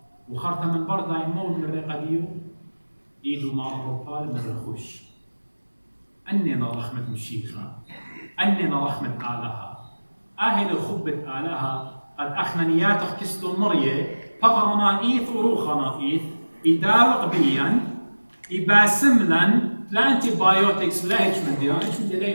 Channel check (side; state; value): both; inverted; correlation -1.00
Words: وخرطة من بردا يمون من رقديو إيدو مع الربال من رخوش أننا رحمة مشيخة أننا رحمة آلها أهل خبة آلها قد أخنا نياتك كستو مرية فقرنا إيث وروخنا إيث إداوق بيا إباسملن لا أنتي بايوتكس لا هيش من دي هيش من دي